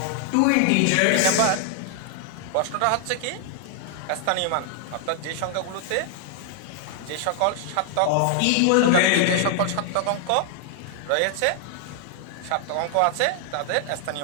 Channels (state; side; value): different; both; correlation 0.00